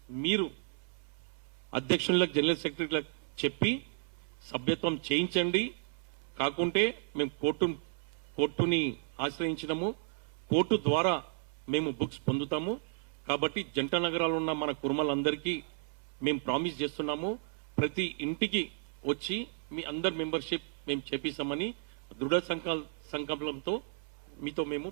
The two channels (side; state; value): left; silent; 55 dB below the other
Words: మీరు అధ్యక్షులకు, జనరల్ సెక్రటరీలకు చెప్పి సభ్యత్వం చేయించండి. కాకుంటే మేము కోర్టుని ఆశ్రయించినము, కోర్టు ద్వారా మేము బుక్స్ పొందుతాము. కాబట్టి జంట నగరాలు ఉన్న మన కుర్మలందరికీ మేము ప్రామిస్ చేస్తున్నాము, ప్రతి ఇంటికి వచ్చి మీ అందరి మెంబర్షిప్ మేము చేపిస్తామని దృఢ సంకల్పంతో మీతో మేము